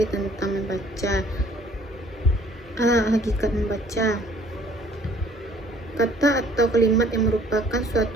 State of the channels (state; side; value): normal; both; correlation 0.57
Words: tentang membaca. Hakikat membaca. Kata atau kalimat yang merupakan